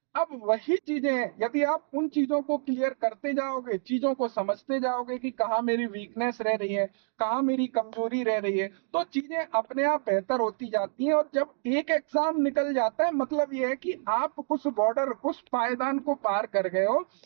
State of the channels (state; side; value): silent; left; digital silence